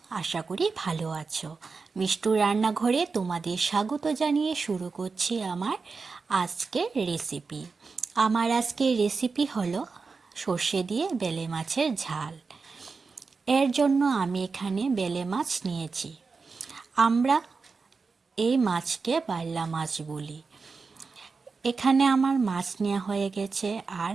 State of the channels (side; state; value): left; quieter; 4.6 dB